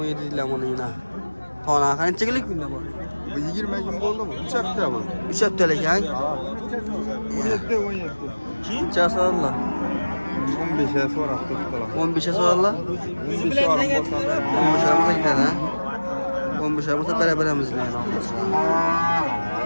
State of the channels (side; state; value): both; inverted; correlation -1.00